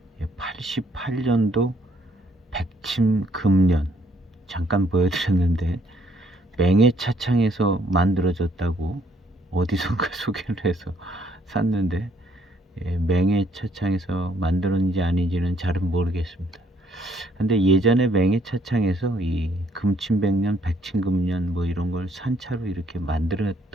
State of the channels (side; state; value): both; normal; correlation 0.67